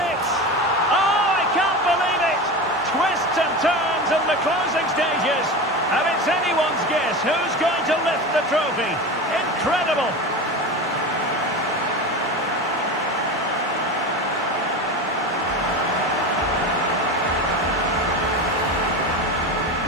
Oh, I can't believe it! Twists and turns in the closing stages. And it's anyone's guess who's going to lift the trophy. Incredible!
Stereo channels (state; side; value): normal; both; correlation 0.26